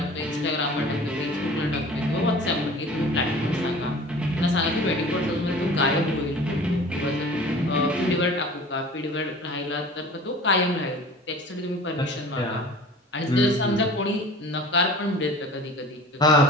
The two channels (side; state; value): both; normal; correlation 0.42